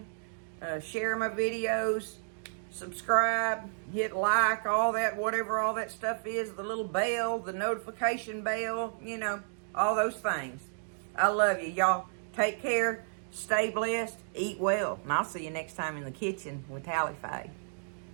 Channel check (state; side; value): silent; left; digital silence